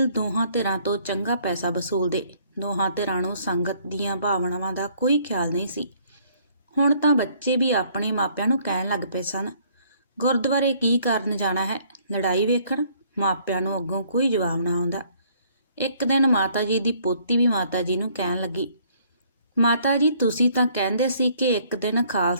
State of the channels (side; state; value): both; inverted; correlation -0.62